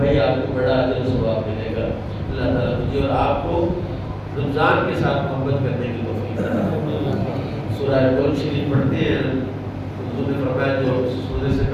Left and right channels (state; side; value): identical; both; correlation 1.00